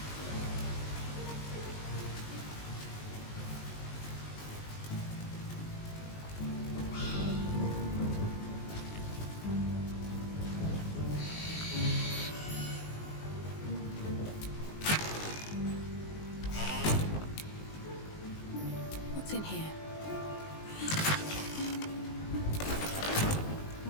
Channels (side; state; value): right; late; 19 ms